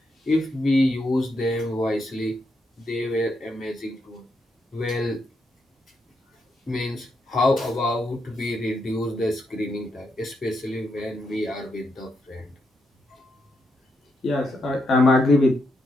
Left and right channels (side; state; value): both; normal; correlation 0.81